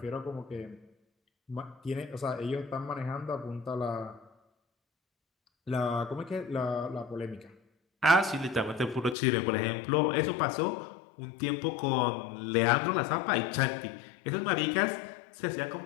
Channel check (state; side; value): drops out; right; at 9.2 s